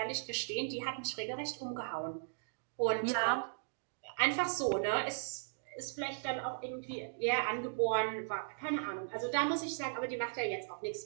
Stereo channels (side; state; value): left; silent; digital silence